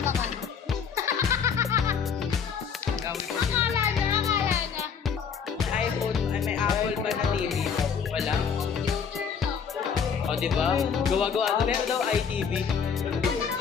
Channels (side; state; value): right; quieter; 6.7 dB